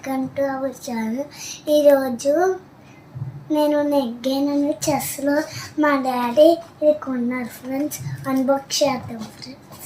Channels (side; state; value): both; identical; correlation 1.00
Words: to our channel. ఈరోజు నేను నెగ్గానని చెస్లో మా డాడీ ఇది కొన్నారు ఫ్రెండ్స్. అన్బాక్స్ చేద్దాం